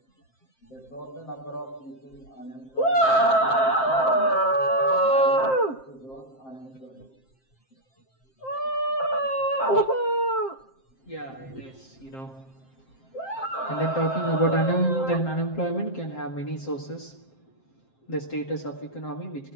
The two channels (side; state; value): right; late; 7.6 ms